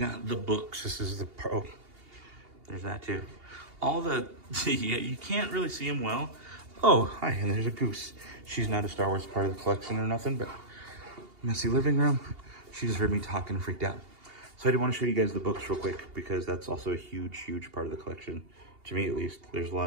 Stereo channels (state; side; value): late; left; 2.8 ms